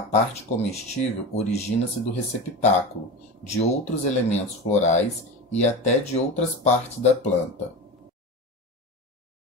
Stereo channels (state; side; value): normal; both; correlation 0.26